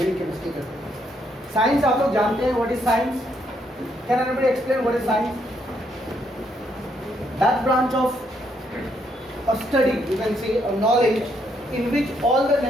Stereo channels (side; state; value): both; normal; correlation 0.74